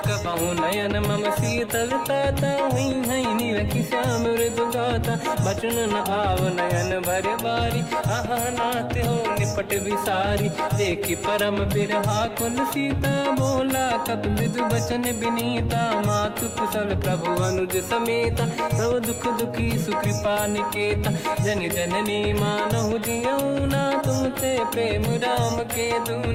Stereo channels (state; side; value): identical; both; correlation 1.00